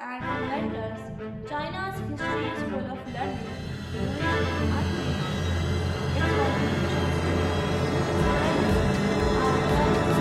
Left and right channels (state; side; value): identical; both; correlation 1.00